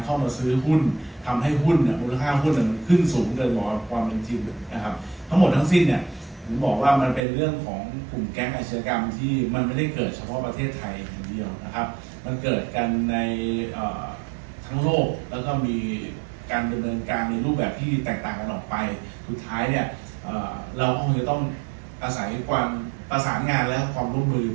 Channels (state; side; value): drops out; left; at 7.2 s